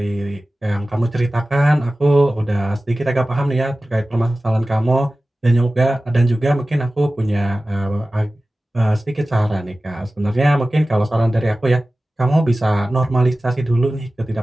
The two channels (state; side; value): normal; both; correlation 0.96